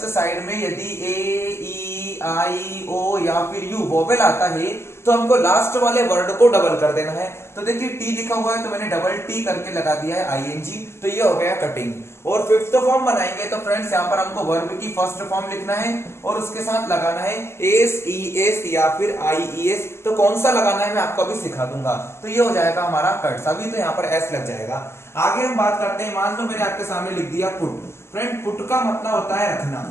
साइड में यदि ए ई आई ओ या फिर यू वोवेल आता है तो हमको लास्ट वाले वर्ड को डबल कर देना है। तो देखिए टी लिखा हुआ है तो मैंने डबल टी करके लगा दिया है आईएनजी। तो ये हो गया कटिंग। और फिफ्थ फॉर्म बनाएंगे तो फ्रेंड्स यहाँ पर हमको वर्ब की फर्स्ट फॉर्म लिखना है और उसके साथ लगाना है एस ई एस या फिर आई ई एस। तो कौन सा लगाना है मैं आपको अभी सिखा दूंगा। तो ये हो जाएगा हमारा कट। अभी तो यहाँ पर एस लग जाएगा। आगे हम बात करते हैं, मान लो मैंने आपके सामने लिख दिया पुट। फ्रेंड पुट का मतलब होता है रखना,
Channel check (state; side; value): late; right; 0.12 ms